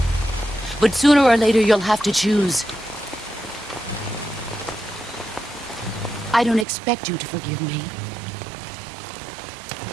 But sooner or later, you'll have to choose. I don't expect you to forgive me.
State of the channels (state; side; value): drops out; left; at 6.7 s